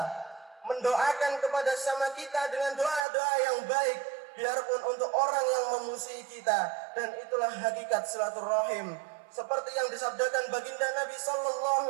mendoakan kepada sesama kita dengan doa-doa yang baik, biarpun untuk orang yang memusuhi kita. Dan itulah hakikat silaturahim, seperti yang disabdakan baginda Nabi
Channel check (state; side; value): drops out; left; at 3.1 s